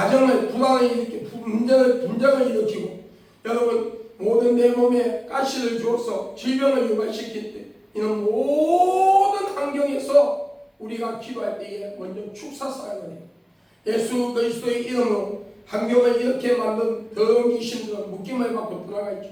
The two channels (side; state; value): both; identical; correlation 1.00